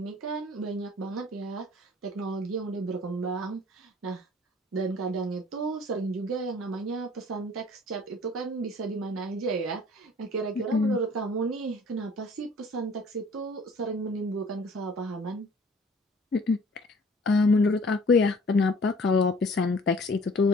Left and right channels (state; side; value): normal; both; correlation 0.52